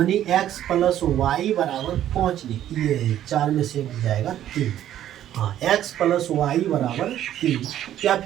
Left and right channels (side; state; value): left; quieter; 11.7 dB